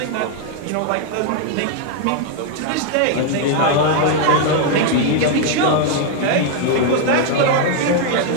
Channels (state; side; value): different; both; correlation 0.00